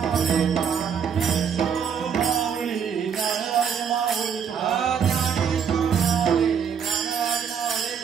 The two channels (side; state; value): left; quieter; 7.3 dB